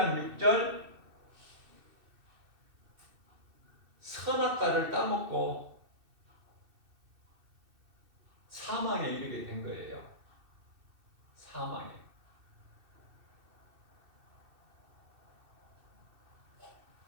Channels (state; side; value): late; left; 2.6 ms